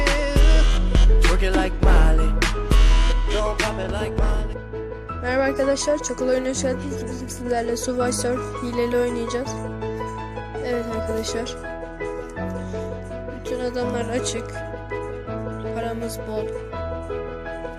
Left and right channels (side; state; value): both; identical; correlation 1.00